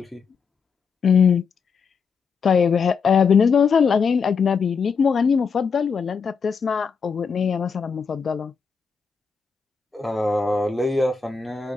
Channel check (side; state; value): right; quieter; 5.7 dB